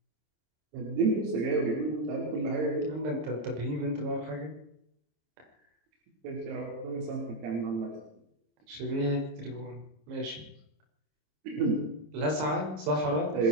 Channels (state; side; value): late; left; 26 ms